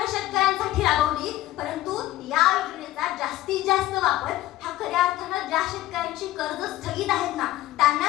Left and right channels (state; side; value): quieter; right; 15.1 dB